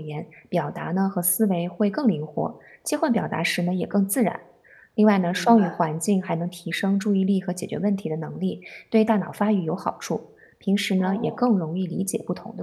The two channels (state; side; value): identical; both; correlation 1.00